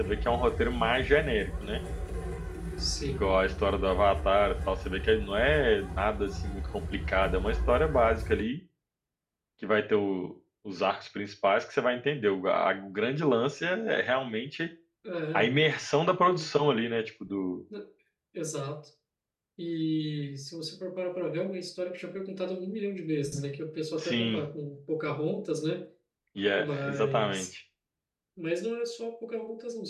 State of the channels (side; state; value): both; identical; correlation 1.00